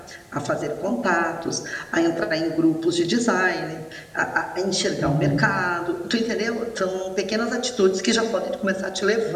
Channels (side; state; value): both; identical; correlation 1.00